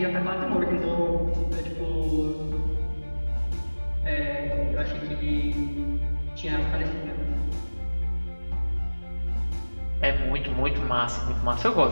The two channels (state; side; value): inverted; both; correlation -1.00